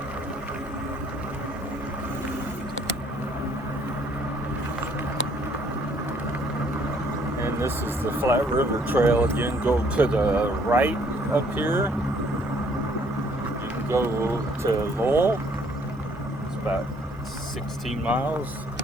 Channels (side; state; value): both; normal; correlation 0.62